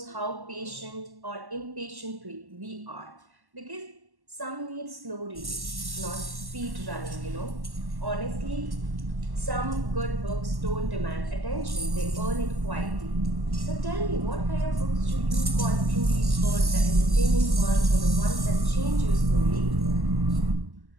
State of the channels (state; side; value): late; left; 1.1 ms